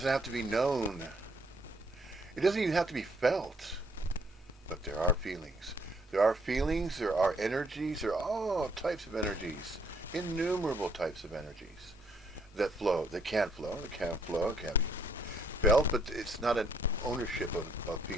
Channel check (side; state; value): both; normal; correlation 0.67